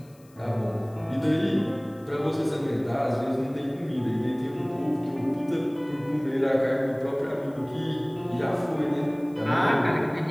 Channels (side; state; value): left; noise; hiss, 30 dB below the sound